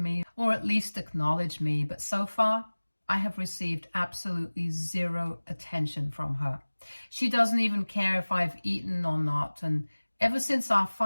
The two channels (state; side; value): inverted; both; correlation -1.00